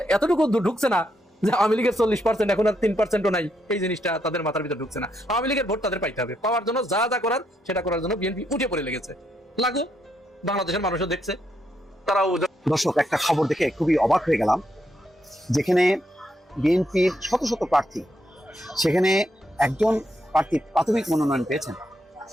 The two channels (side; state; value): both; normal; correlation 0.78